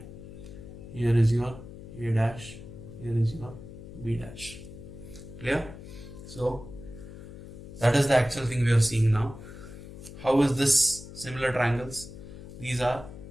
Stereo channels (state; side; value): noise; left; hum, 14 dB below the sound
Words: Here is your A dash, here is your B dash. Clear? So that is the actual thing we are seeing now. How is this similar triangles? These are